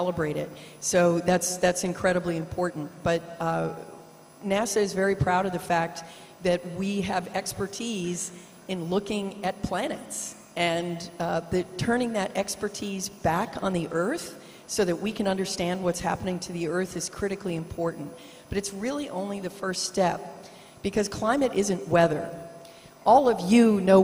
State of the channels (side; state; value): both; identical; correlation 1.00